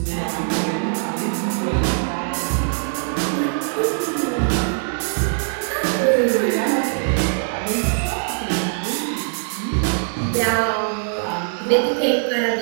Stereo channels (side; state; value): left; silent; digital silence